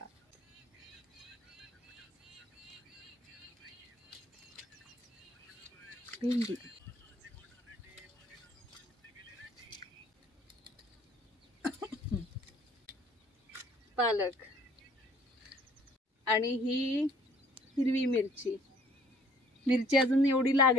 भेंडी, पालक आणि ही हिरवी मिरची. मिरची अजून एवढी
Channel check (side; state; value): both; normal; correlation 0.58